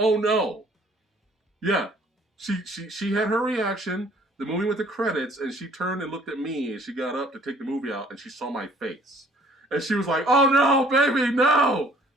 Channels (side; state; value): both; normal; correlation 0.58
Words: no? Yeah, she had her reaction. The movie went to credits, and she turned and looked at me, and she got up to take the movie out, and she saw my face, and she was like, "Oh no, baby, no!"